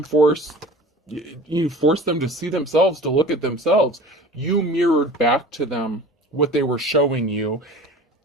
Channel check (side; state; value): both; normal; correlation 0.41